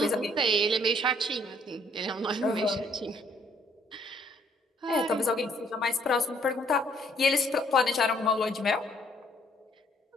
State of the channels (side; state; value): both; normal; correlation 0.64